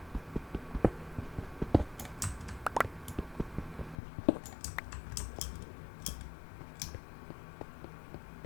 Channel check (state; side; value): drops out; right; at 4.0 s